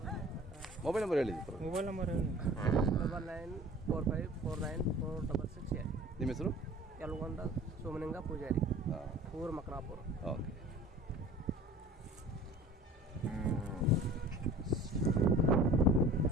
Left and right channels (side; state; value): both; normal; correlation 0.45